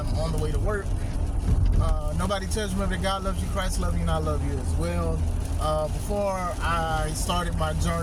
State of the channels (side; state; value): both; identical; correlation 1.00